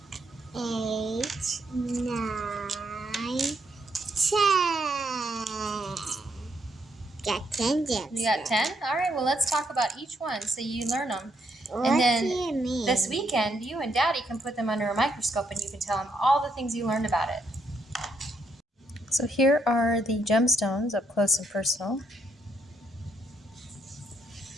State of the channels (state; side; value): normal; both; correlation 0.75